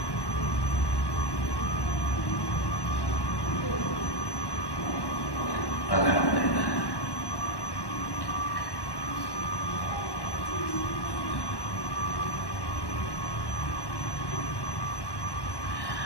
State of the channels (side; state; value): right; late; 1.1 ms